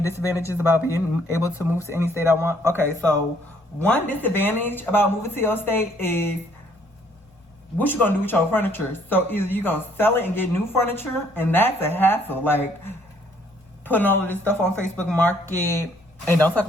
disadvantages about being able to move to any state I want? Okay, so one disadvantage about moving to your state is what you gonna do with your furniture. So either you gonna sell it and get new furniture, and that's a hassle. Like, putting all of this stuff on Facebook Market, and don't talk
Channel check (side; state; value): both; normal; correlation 0.64